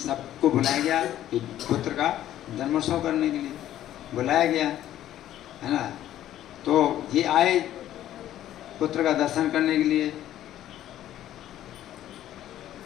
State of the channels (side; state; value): right; quieter; 12.5 dB